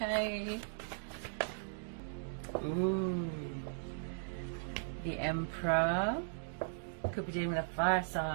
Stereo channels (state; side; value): silent; left; digital silence